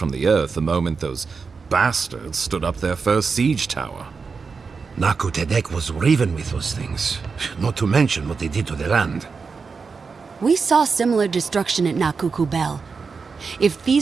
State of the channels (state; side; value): quieter; left; 5.0 dB